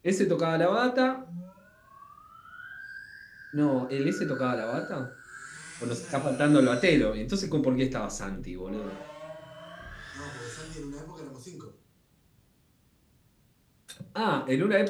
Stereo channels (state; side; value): identical; both; correlation 1.00